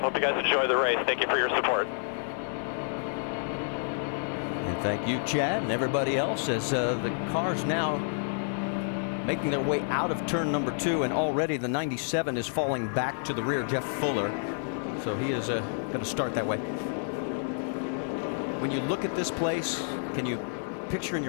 Hope you guys enjoy the race. Thank you for your support. And thank you, Chad, and everybody else, as the cars now making their way out of turn number 2, and already the 97 is falling back to the rear, Jeff Fuller. So he is going to start that way. When you look at this place, can you picture in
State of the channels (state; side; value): silent; right; 58 dB below the other